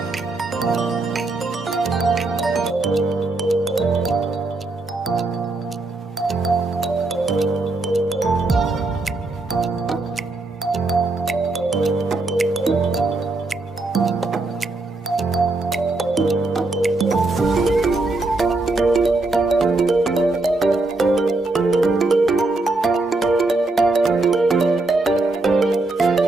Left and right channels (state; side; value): quieter; left; 3.1 dB